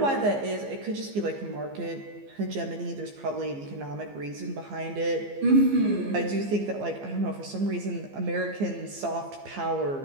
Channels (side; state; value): left; late; 15 ms